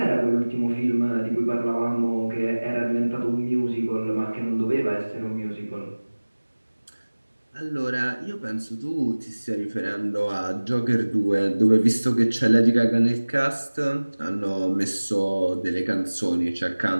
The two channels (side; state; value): both; inverted; correlation -1.00